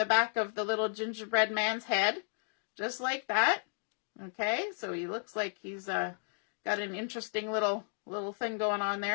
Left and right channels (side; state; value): right; silent; digital silence